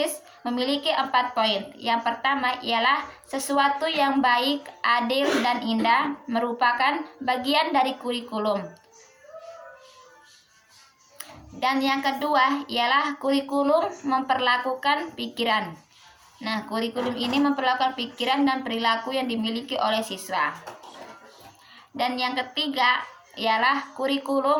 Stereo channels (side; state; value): both; identical; correlation 1.00